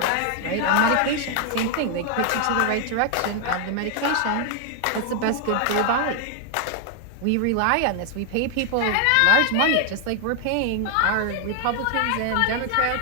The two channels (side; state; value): both; different; correlation 0.00